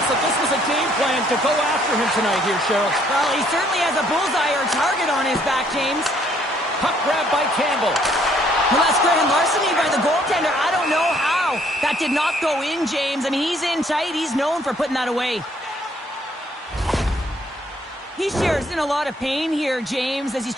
that this was a game plan to go after him tonight here, Cheryl. Well, he certainly has a bullseye or target on his back, James. Puck grab by Campbell. Well, that's grand larceny by the goaltender. I don't know how. That did not go in, James. I mean, he's in tight. He's known for putting that away. He shares in a lot of pain here, James, as he's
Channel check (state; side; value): normal; both; correlation 0.65